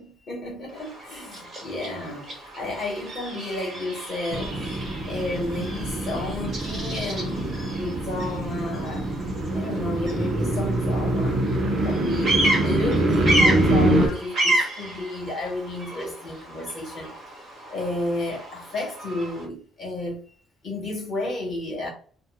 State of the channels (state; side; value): normal; both; correlation 0.71